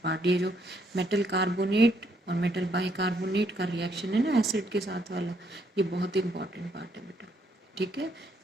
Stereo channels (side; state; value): both; normal; correlation 0.71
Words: पार्ट। ये जो मेटल कार्बोनेट और मेटल बाइकार्बोनेट का रिएक्शन है ना एसिड के साथ वाला, ये बहुत इंपॉर्टेंट पार्ट है बेटा। ठीक है,